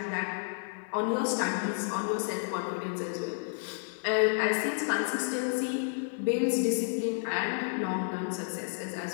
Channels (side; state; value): right; silent; digital silence